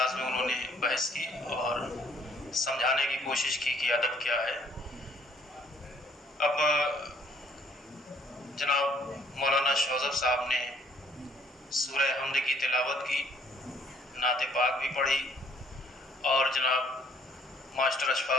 میں انہوں نے بحث کی اور سمجھانے کی کوشش کی کہ ادب کیا ہے. اب جناب مولانا شوذب صاحب نے سورہ حمد کی تلاوت کی, نعت پاک بھی پڑھی اور جناب ماسٹر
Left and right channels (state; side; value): normal; both; correlation 0.62